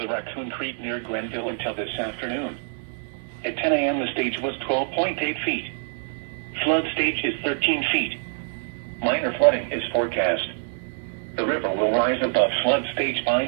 the Raccoon Creek near Grenville until this afternoon. At 10 a.m. the stage was 12.8 feet. Flood stage is 13 feet. Minor flooding is forecast. The river will rise above flood stage by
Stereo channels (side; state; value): left; silent; digital silence